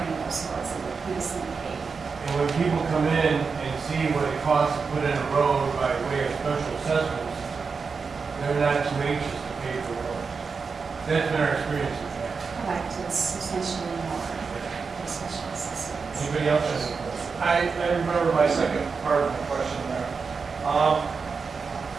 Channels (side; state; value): left; quieter; 5.1 dB